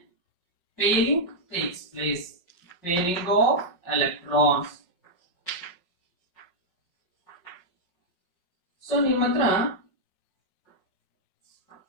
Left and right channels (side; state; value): right; late; 5.5 ms